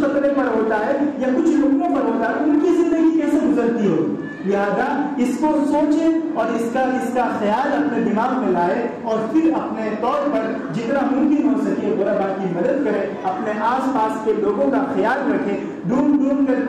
قطرے پر ہوتا ہے یا کچھ لقموں پر ہوتا ہے, ان کی زندگی کیسے گزرتی ہوگی. لہذا اس کو سوچیں اور اس کا خیال اپنے دماغ میں لائے اور پھر اپنے طور پر جتنا ممکن ہو سکے غربا کی مدد کریں. اپنے آس پاس کے لوگوں کا خیال رکھیں, ڈھونڈ کر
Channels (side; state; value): both; identical; correlation 1.00